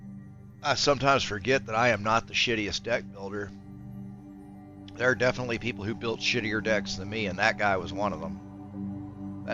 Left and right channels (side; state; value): both; identical; correlation 1.00